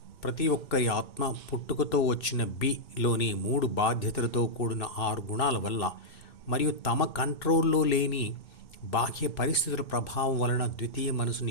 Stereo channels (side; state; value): right; late; 2.6 ms